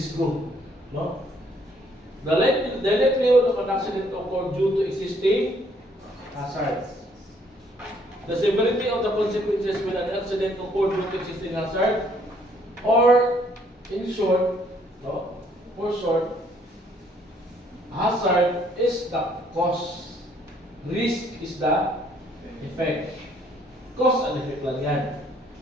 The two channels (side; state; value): both; normal; correlation 0.65